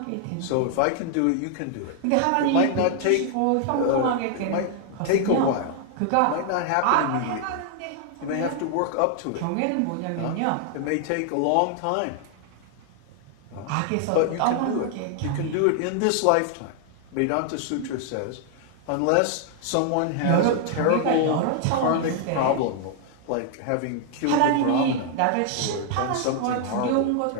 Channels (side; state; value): both; different; correlation 0.00